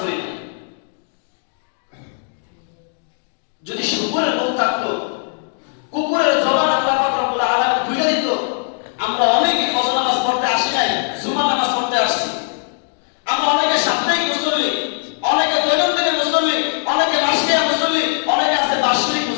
পড়ি না। যদি শুকরের মুখ থাকতো, কুকুরের জবান আল্লাহ পাক রব্বুল আলামিন খুলে দিত, আমরা অনেকে ফজর নামাজ পড়তে আসি নাই, জুমার নামাজ পড়তে আসছি। আমরা অনেকে সাপ্তাহিক মুসল্লি, অনেকে দৈনন্দিন মুসল্লি, অনেকে মাসিক মুসল্লি, অনেকে আছে বার্ষিক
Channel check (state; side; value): silent; right; 64 dB below the other